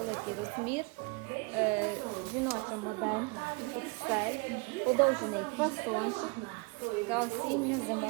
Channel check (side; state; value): left; quieter; 29.8 dB